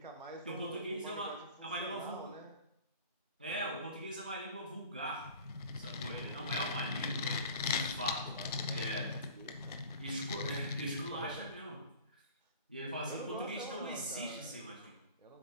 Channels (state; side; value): inverted; both; correlation -0.42